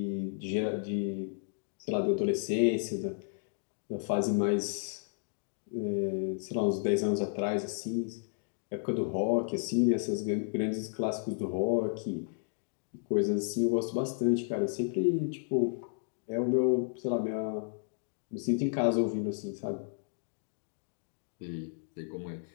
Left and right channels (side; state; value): right; silent; digital silence